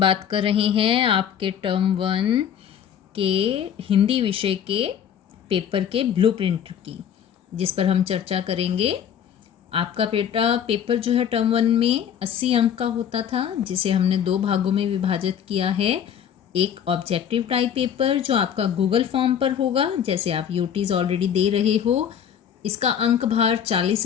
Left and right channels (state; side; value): quieter; right; 8.8 dB